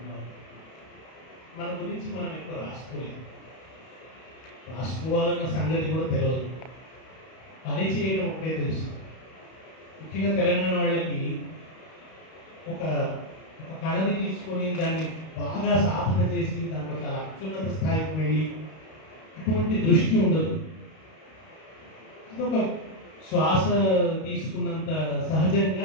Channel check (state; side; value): late; right; 32 ms